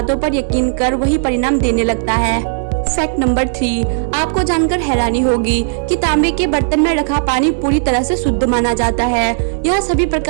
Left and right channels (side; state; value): left; silent; 57 dB below the other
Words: पर यकीन कर वही परिणाम देने लगता है। फैक्ट नंबर 3, आपको जानकर हैरानी होगी कि तांबे के बर्तन में रखा पानी पूरी तरह से शुद्ध माना जाता है। यह सभी